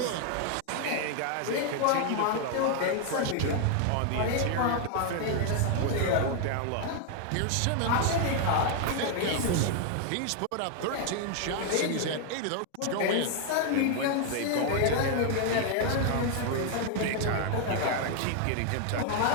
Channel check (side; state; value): both; different; correlation 0.00